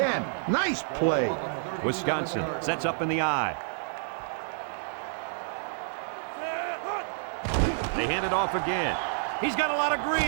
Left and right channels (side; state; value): left; silent; 56 dB below the other